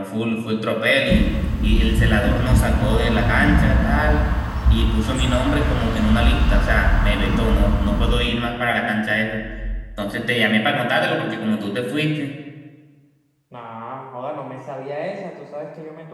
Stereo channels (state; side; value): identical; both; correlation 1.00